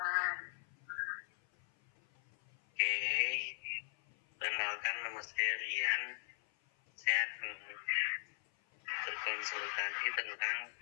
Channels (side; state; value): right; silent; 52 dB below the other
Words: Oke. Perkenalkan, nama saya Rian. Saya akan berkonsultasi tentang